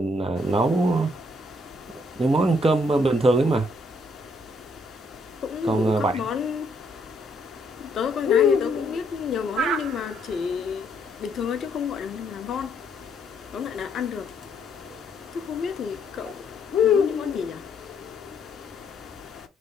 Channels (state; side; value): normal; both; correlation 0.70